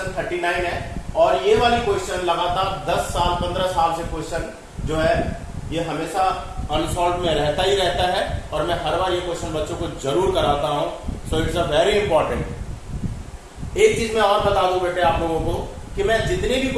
39 है। और ये वाली क्वेश्चन लगातार 10 साल 15 साल से क्वेश्चन जो है ये हमेशा अनसॉल्व में रहता ही रहता है, और मैं हर बार ये क्वेश्चन बच्चों को जरूर कराता हूं। So it's a very important. एक चीज मैं और बता दूं बेटे आप लोगों को कि मैं जितने भी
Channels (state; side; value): identical; both; correlation 1.00